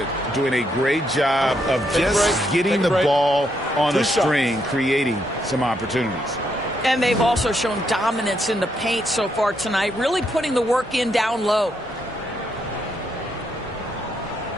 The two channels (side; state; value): both; normal; correlation 0.77